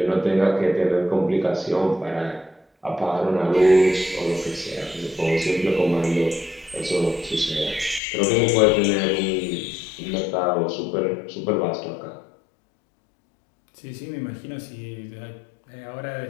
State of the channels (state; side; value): drops out; right; at 8.0 s